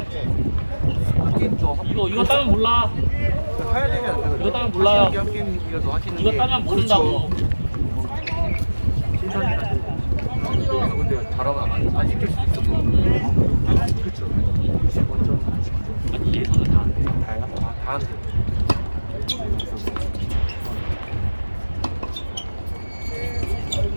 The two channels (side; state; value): both; inverted; correlation -1.00